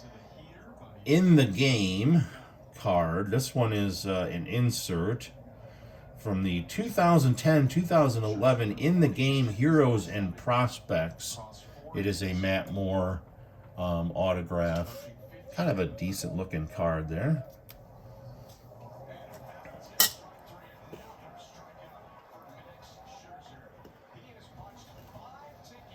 In the Game card. This one is an insert from the 2010-2011 In the Game Heroes and Prospects. It is a Matt Moore autograph. Kind of a decent looking card there.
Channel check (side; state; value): both; identical; correlation 1.00